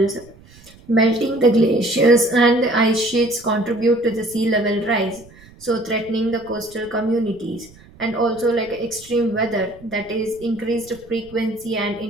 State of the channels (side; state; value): right; noise; rumble, 24 dB below the sound